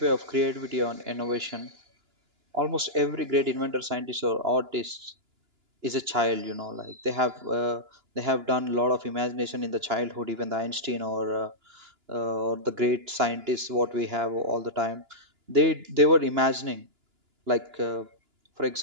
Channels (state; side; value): late; left; 2.9 ms